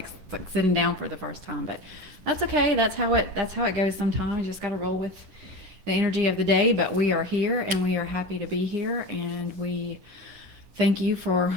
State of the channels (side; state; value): left; late; 11 ms